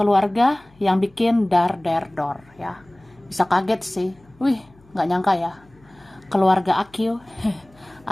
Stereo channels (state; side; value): noise; left; hum, 29 dB below the sound